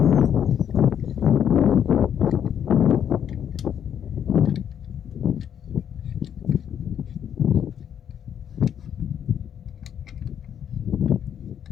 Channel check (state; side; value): quieter; right; 9.0 dB